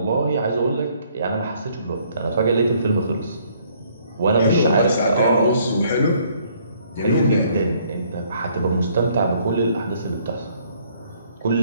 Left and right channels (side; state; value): both; inverted; correlation -0.65